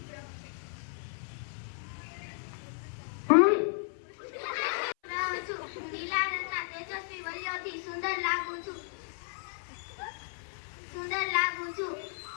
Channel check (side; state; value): right; silent; 55 dB below the other